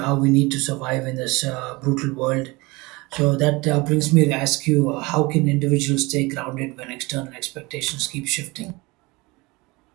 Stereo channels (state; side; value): quieter; left; 23.9 dB